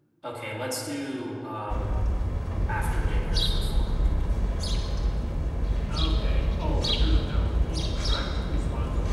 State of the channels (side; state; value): both; identical; correlation 1.00